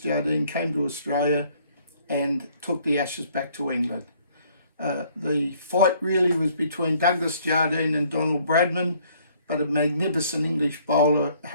came to Australia and took the Ashes back to England. The fight really was between Douglas Jardine and Donald Bradman, but a magnificent English bowler,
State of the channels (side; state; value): both; inverted; correlation -0.62